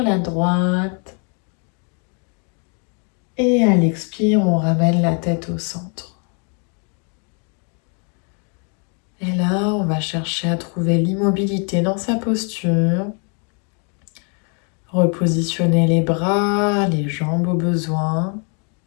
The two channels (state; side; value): quieter; right; 38.6 dB